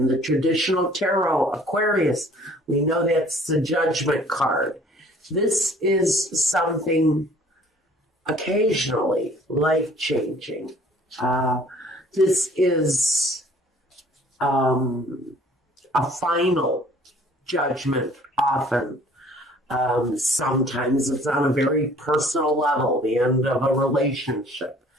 the traditional tarot, Aquarius, we know that's the judgment card. This is something occasionally life-changing. This is a final judgment often. Sometimes it's on a very personal level, the end of a relationship,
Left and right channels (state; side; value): normal; both; correlation 0.54